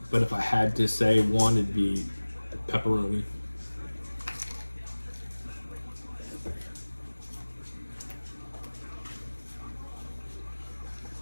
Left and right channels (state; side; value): inverted; both; correlation -1.00